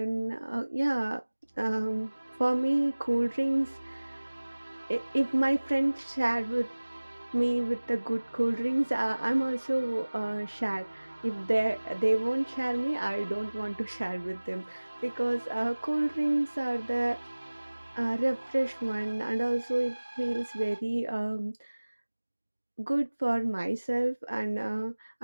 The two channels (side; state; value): both; inverted; correlation -1.00